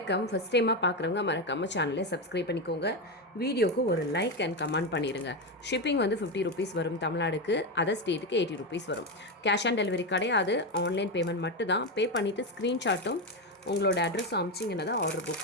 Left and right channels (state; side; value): normal; both; correlation 0.11